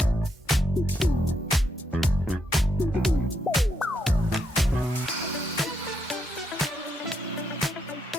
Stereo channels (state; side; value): normal; both; correlation 0.79